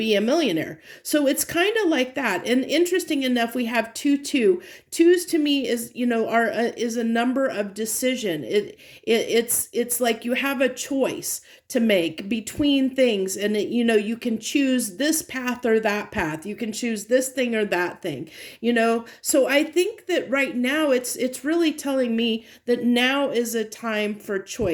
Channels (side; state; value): both; identical; correlation 1.00